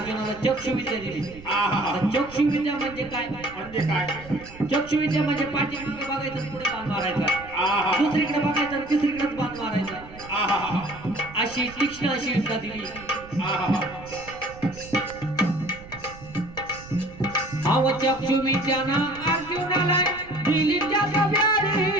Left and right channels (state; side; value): noise; right; rumble, 18 dB below the sound